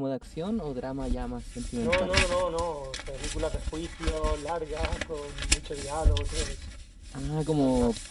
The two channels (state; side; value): identical; both; correlation 1.00